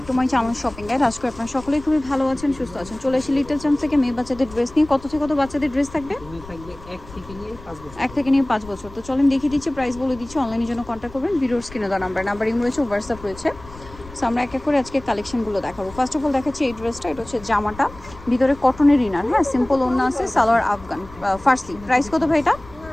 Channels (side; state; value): left; noise; rumble, 18 dB below the sound